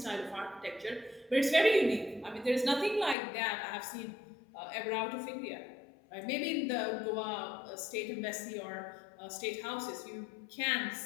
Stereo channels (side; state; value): right; drops out; at 3.2 s